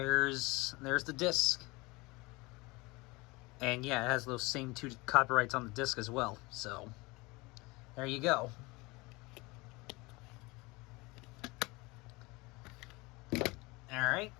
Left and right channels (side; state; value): right; quieter; 24.1 dB